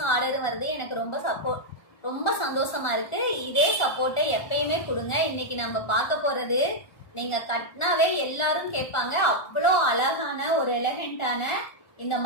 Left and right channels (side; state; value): right; late; 1.4 ms